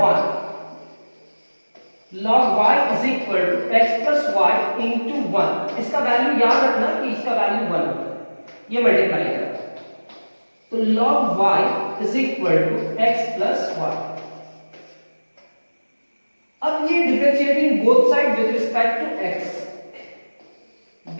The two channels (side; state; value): both; inverted; correlation -1.00